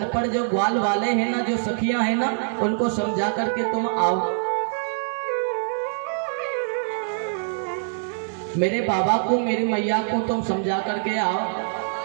जो ग्वाल वाले हैं ना, जो सखियां हैं ना, उनको समझा करके तुम आओ। मेरे बाबा को, मेरी मैया को तुम समझा करके आओ।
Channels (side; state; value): left; silent; digital silence